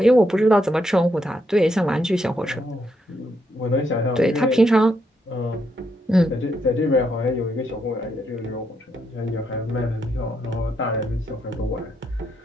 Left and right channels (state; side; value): normal; both; correlation 0.78